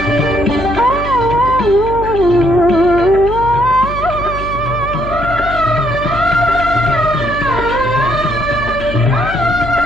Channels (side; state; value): left; noise; hum, 8 dB below the sound